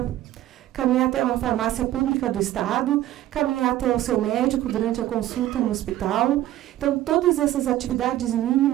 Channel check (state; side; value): quieter; left; 13.9 dB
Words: Caminhar até uma farmácia pública do estado, caminhar até o seu médico durante a consulta no hospital. Então, todas essas atividades